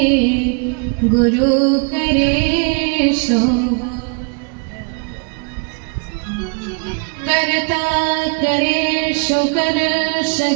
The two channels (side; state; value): left; quieter; 35.7 dB